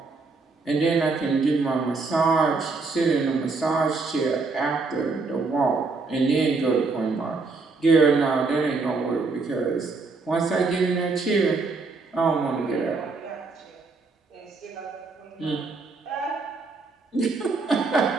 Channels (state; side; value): quieter; left; 4.0 dB